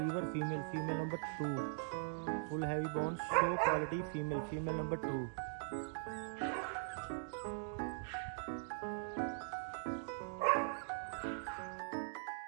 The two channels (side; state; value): left; silent; digital silence